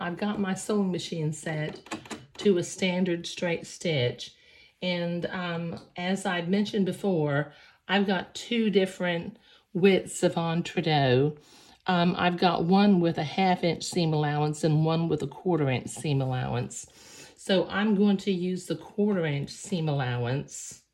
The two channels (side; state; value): both; identical; correlation 1.00